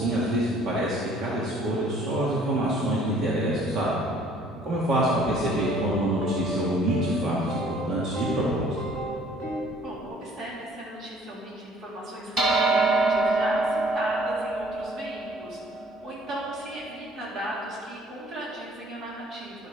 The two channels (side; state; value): both; normal; correlation 0.56